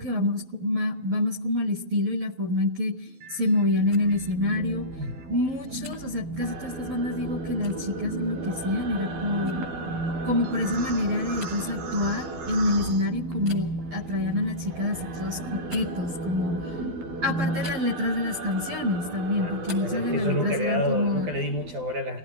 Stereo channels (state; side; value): late; left; 12 ms